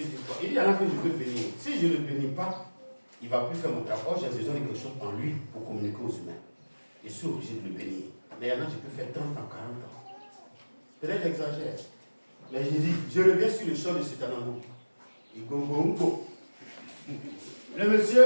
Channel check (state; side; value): inverted; both; correlation -1.00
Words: il y en a que je peux bénir. Si je ne le bénis pas, il ne va plus faire mon travail. Or, j'ai besoin de quelque chose en lui pour communiquer aux humains. Je suis obligé de le bénir. Mais il y en a que je peux faire 30 ans, 40 ans. Peut-être j'exagère. Mais je dis, je reviens sur le champ de Sitanango. Le monsieur,